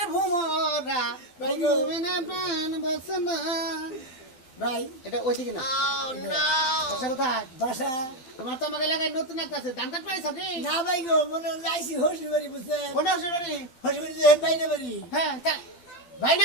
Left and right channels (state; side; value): late; right; 12 ms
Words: ভুমরা ভাই গো ঘুমিরে প্রাণ বাসে না ভাই এটা ওইদিকে না বাসা কোথায় বাসা তোমার তো আমাকে এলাকায় নতুন একটা আছে ধান কাট পাইছ কি না ভাই গো মনে আইসি হসি বাড়ি বুঝছে কোন হসুরি হসি বাড়ি বাইরে বাড়ি হ্যাঁ ভাই না